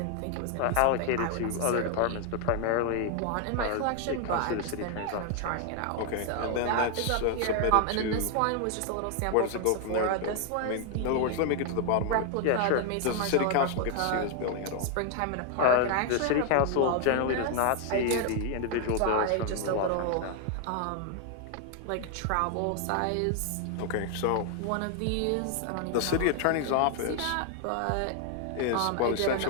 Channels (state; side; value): different; both; correlation 0.00